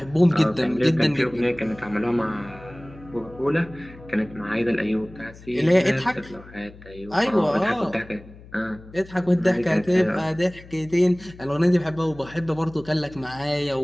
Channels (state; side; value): noise; left; hum, 20 dB below the sound